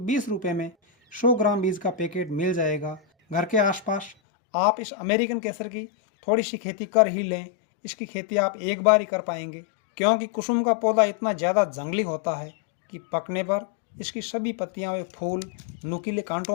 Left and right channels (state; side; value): drops out; right; at 4.2 s